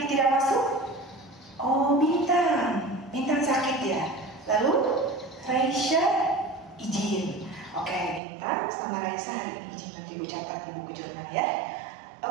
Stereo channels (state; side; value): drops out; left; at 8.2 s